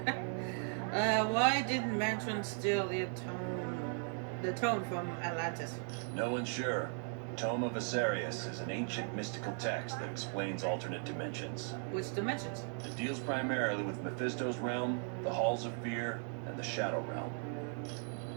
Why didn't Mandarin steal the tome from Atlantis? No one's sure. Tome of Asarius is an ancient mystical text that explains alternate dimensions. Which dimensions? It deals primarily with Mephisto's realm, the Halls of Fear, and the Shadow Realm.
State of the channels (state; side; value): silent; left; 53 dB below the other